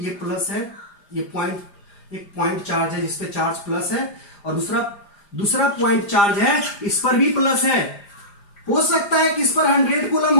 प्लस है, ये पॉइंट, एक पॉइंट चार्ज है जिसपे चार्ज प्लस है, और दूसरा पॉइंट चार्ज है इस पर भी प्लस है। हो सकता है कि इस पर 100 कूलम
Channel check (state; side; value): late; right; 4.9 ms